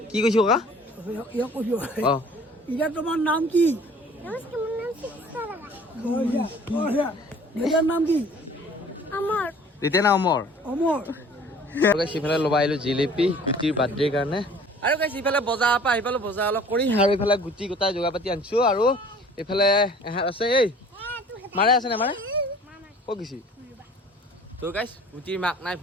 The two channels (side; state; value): both; normal; correlation 0.49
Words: কি কৈছো ককা অ ইয়া তোমাৰ নাম কি এটাৰ নাম কি আমাৰ এতিয়া না অমৰ অমৰ সিফালে ল'বা আহিলো জিলেপি গুটিৰ বাৰ্থডেৰ কাৰণে আৰু গাইছ ইফালে বজাৰৰ পৰা আহি পালো বজাৰ অলপ কৰি আৰু ইফালে গুটি গোটাই যোগাৰ পাতি আনিছো আৰু এইফালে এহাত আছে এই মাৰে আছে নে মাৰে ক'ত গৈছি তো গাইছ গুটিৰ মাক নাই